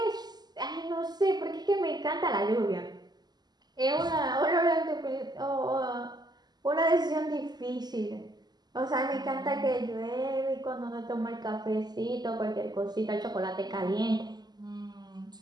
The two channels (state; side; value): late; left; 0.20 ms